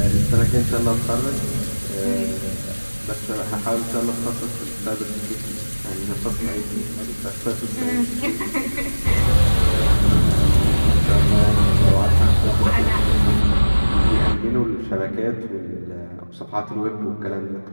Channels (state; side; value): inverted; both; correlation -1.00